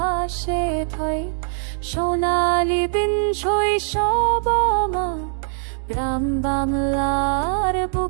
ভয়। সোনালি দিন শৈশব আমার, গ্রাম বাংলার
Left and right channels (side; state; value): left; silent; digital silence